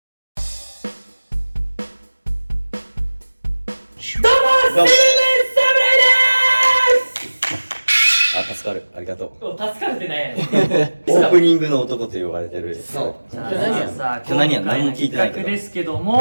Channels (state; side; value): inverted; both; correlation -1.00